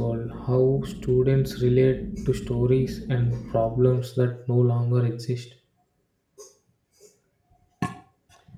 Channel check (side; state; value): both; identical; correlation 1.00